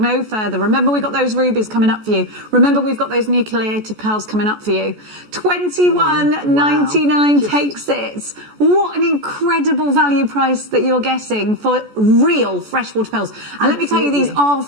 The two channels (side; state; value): left; late; 14 ms